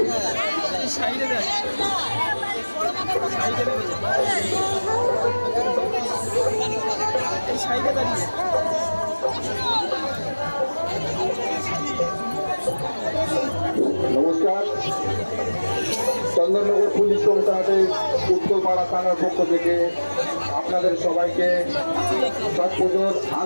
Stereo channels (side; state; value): both; inverted; correlation -1.00